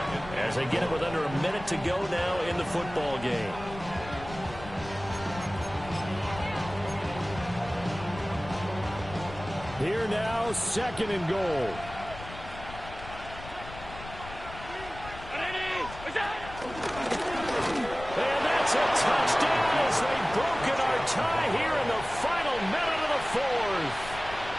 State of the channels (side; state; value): left; noise; rumble, 14 dB below the sound